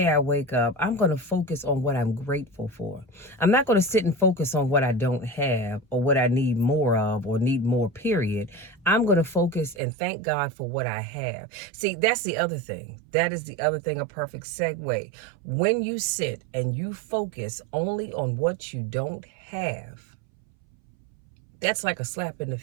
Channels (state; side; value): drops out; left; at 9.8 s